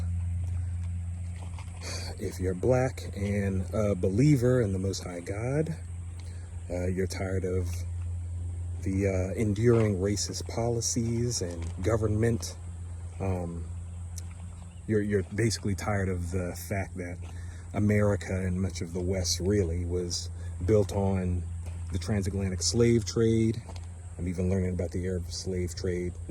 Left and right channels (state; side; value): identical; both; correlation 1.00